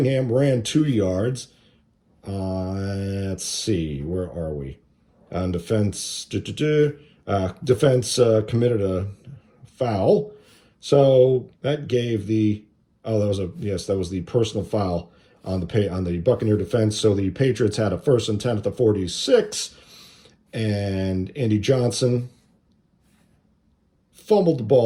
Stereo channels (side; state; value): both; identical; correlation 1.00